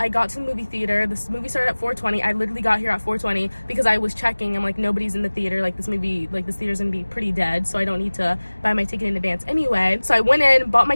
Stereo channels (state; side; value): inverted; both; correlation -1.00